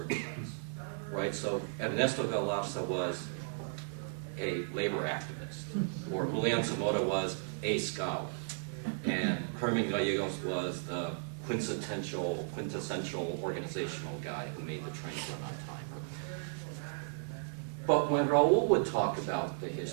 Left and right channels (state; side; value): silent; left; 54 dB below the other